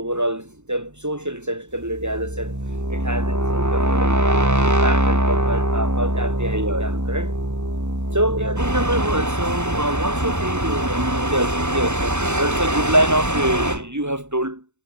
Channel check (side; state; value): left; late; 0.83 ms